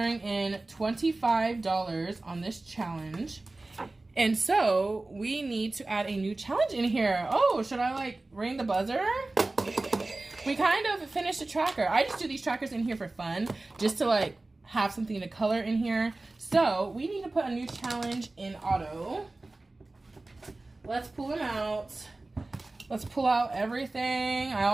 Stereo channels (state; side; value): quieter; left; 3.0 dB